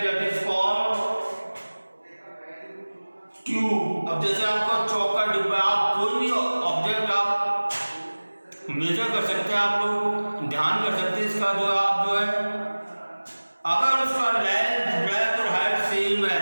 दैट इज कॉल्ड क्यूब। अब जैसे आपका चौक का डिब्बा, आप कोई भी ऑब्जेक्ट आप मेजर कर सकते हैं, आप लोग ध्यान कर सकते हैं इसका जो आप जो है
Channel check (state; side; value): inverted; both; correlation -1.00